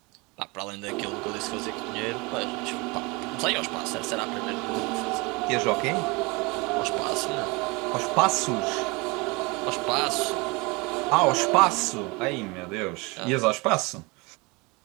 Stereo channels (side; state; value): left; quieter; 26.6 dB